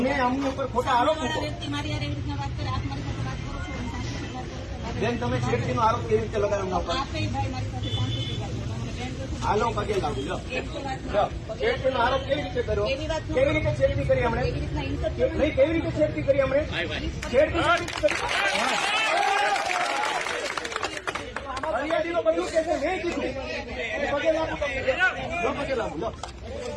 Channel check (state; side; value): identical; both; correlation 1.00